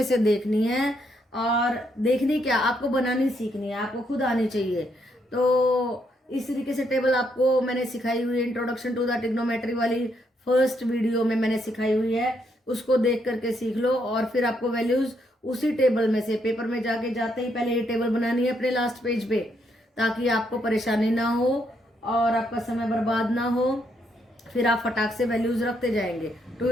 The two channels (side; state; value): both; normal; correlation 0.75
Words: से देखनी है, और देखनी क्या, आपको बनानी सीखनी है, आपको खुद आनी चाहिए। तो इस तरीके से टेबल आपको मैंने सिखाई हुई है, इंट्रोडक्शन टू द ट्रिग्नोमेट्री वाली फर्स्ट वीडियो में मैंने सिखाई हुई है, उसको देख करके सीख लो। और फिर आपको वैल्यूज उसी टेबल में से पेपर में जाके जाते ही पहले ये टेबल बनानी है अपने लास्ट पेज पे, ताकि आपको परेशानी ना हो और आपका समय बर्बाद ना हो। फिर आप फटाक से वैल्यूज रखते जाएंगे। 2